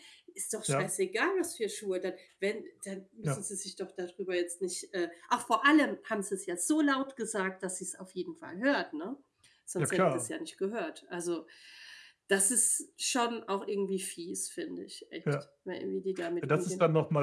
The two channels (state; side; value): identical; both; correlation 1.00